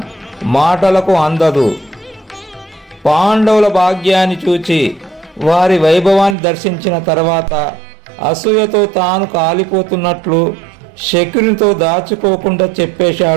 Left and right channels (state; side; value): drops out; left; at 6.4 s